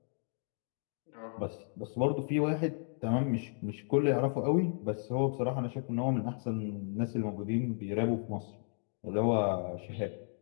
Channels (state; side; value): silent; right; 55 dB below the other